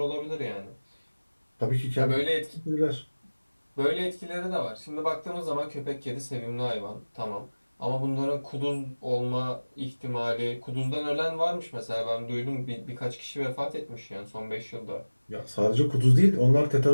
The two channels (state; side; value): inverted; both; correlation -1.00